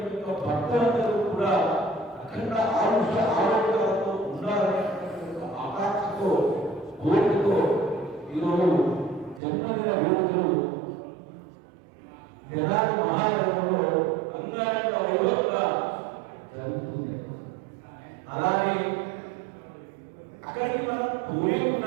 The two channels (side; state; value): left; drops out; at 9.4 s